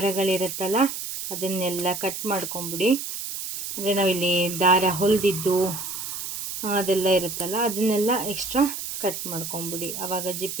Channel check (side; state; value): right; noise; hiss, 6 dB below the sound